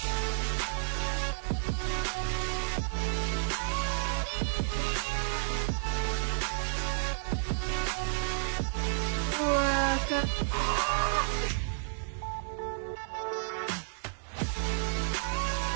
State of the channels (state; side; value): silent; left; 57 dB below the other